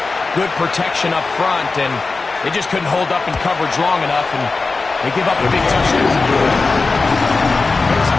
Good protection up front, and they just couldn't hold up in coverage long enough, and they give up a big touchdown. Makes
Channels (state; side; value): quieter; right; 3.9 dB